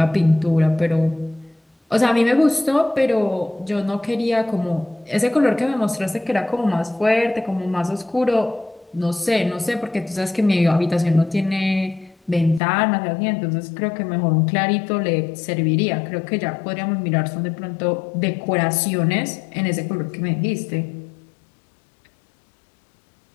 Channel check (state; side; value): drops out; right; at 12.6 s